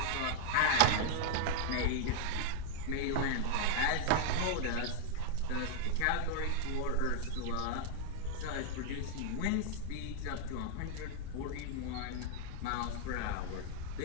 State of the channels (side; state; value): both; different; correlation 0.00